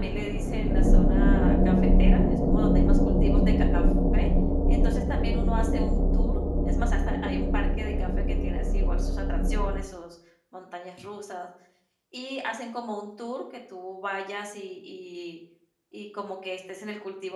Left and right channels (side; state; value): both; identical; correlation 1.00